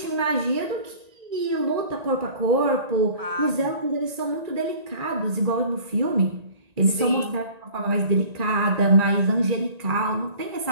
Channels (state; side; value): late; left; 1.9 ms